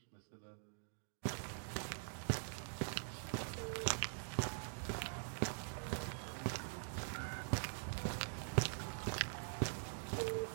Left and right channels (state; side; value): silent; left; digital silence